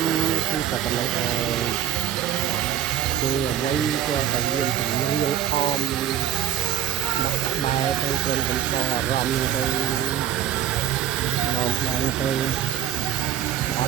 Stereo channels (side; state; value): left; quieter; 10.7 dB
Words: ំគឺតែប៉ុណ្ណឹងហើយគឺអ្វីក៏តែមានចម្រៀងអមដាក់ក្បែរទៅគ្រាន់តែដល់អារម្មណ៍ទៅមកបានទៅអត